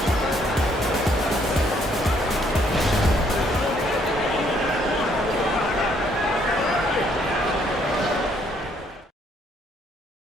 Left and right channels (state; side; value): normal; both; correlation 0.67